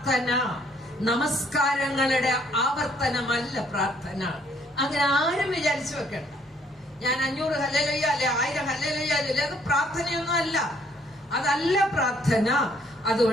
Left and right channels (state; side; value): normal; both; correlation 0.66